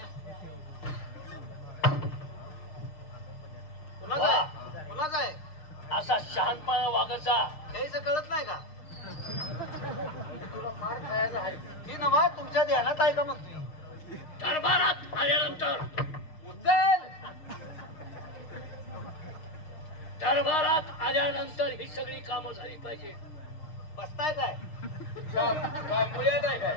कुणाचं आहे? कुणाचं आहे? असा शहाणपणा वागायचा. काहीच कळत नाही का? तुला मार खायला आहे. ती नवा तुमच्या ध्यानात आहे का म्हणतोय? दरबारात आल्यानंतर उचल. दरबारात आल्यानंतर ही सगळी कामं झाली पाहिजे. बसताय काय? काय मुळ्यात आहे काय?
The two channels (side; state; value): right; late; 6.5 ms